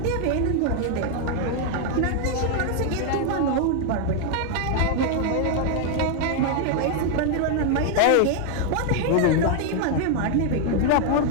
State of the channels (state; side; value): different; both; correlation 0.00